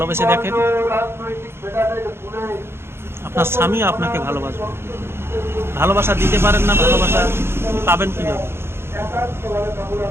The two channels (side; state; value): left; late; 0.12 ms